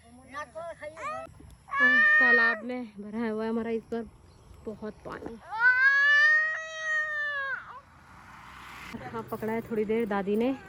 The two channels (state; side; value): identical; both; correlation 1.00